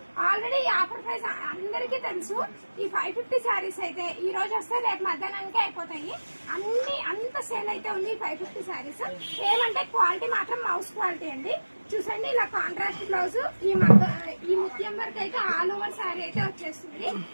ఆల్రెడీ ఈ ఆఫర్ ప్రైస్ అందరికీ తెలుసు. ఈ 550 శారీస్ అయితే ఈ రోజు వస్తే రేపు మధ్యాహ్నానికి అయిపోతాయి. అంత సేల్ అయితే ఉంది 550 శారీస్. ఏమంటే క్వాలిటీ మాత్రం మౌస్ క్వాలిటీ అండి. చూసండి, ఇలా కాంట్రాస్ట్ బ్లౌజ్, ఈ ముత్యం వర్క్ అయితే ఆల్ ఓవర్ శారీ అయితే వచ్చేస్తుంది.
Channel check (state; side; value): inverted; both; correlation -1.00